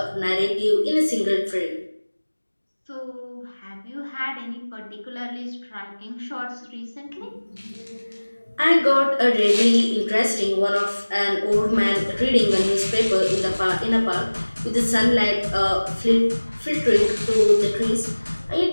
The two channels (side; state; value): both; inverted; correlation -1.00